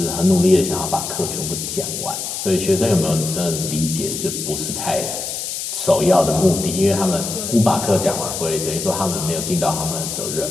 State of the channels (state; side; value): noise; left; hiss, 5 dB below the sound